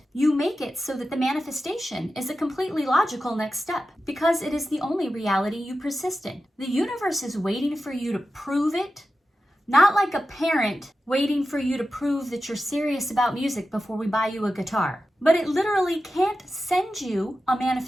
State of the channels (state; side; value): normal; both; correlation 0.92